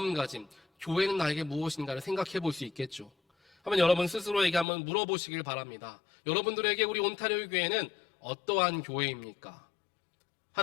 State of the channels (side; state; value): right; drops out; at 4.7 s